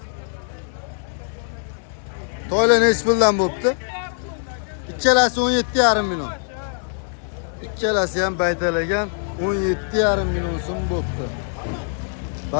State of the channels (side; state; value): right; silent; digital silence